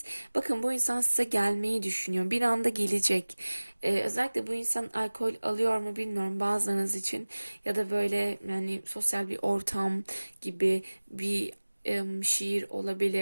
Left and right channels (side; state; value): both; inverted; correlation -1.00